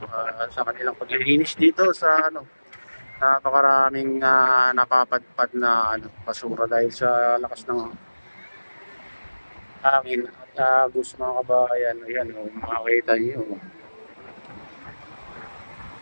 sa kanilang paglilinis dito sa napakaraming napapadpad na basura dahil sa lakas ng hangin at agos mga kabayan. Ayan, makikita nyo.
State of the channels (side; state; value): both; inverted; correlation -1.00